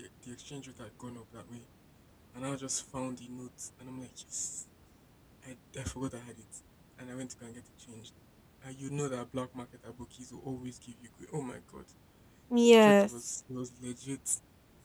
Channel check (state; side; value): identical; both; correlation 1.00